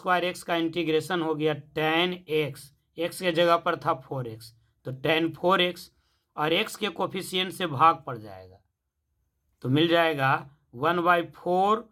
एक्स का इंटीग्रेशन हो गया टेन एक्स, एक्स के जगह पर था 4x, तो टेन 4x, और x के कोफिशिएंट से भाग पड़ जाएगा, तो मिल जाएगा 1/4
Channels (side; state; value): both; identical; correlation 1.00